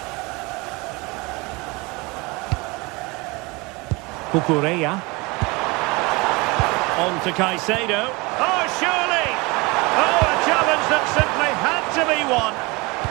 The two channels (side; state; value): left; quieter; 25.6 dB